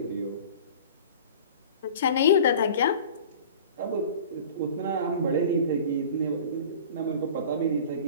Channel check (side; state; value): both; inverted; correlation -0.41